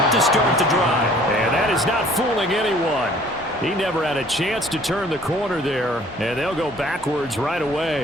to start the drive. And that is not fooling anyone. He never had a chance to turn the corner there, and they'll go backwards right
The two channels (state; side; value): normal; both; correlation 0.55